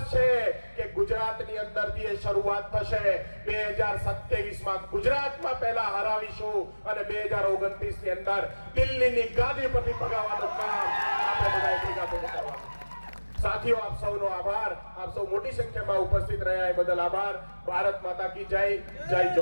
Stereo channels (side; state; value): both; inverted; correlation -1.00